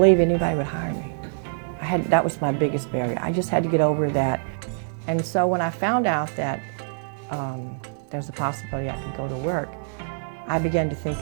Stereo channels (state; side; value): silent; left; digital silence